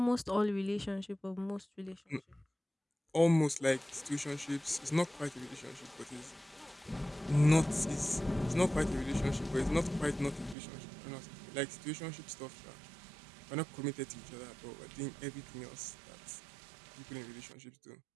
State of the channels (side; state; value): left; drops out; at 10.6 s